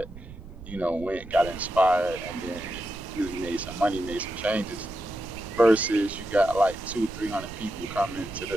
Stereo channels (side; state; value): right; noise; rumble, 15 dB below the sound